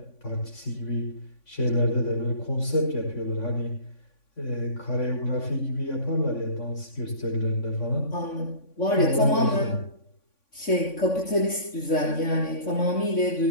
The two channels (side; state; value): right; late; 3.5 ms